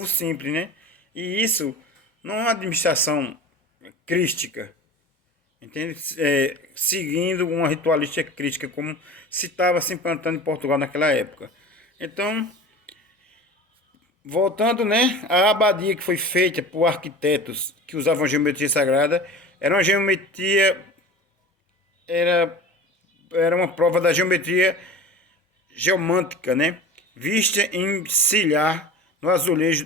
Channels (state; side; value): normal; both; correlation 0.36